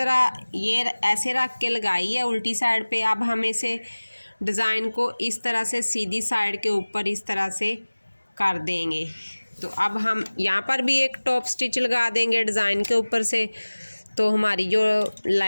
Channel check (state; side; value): inverted; both; correlation -1.00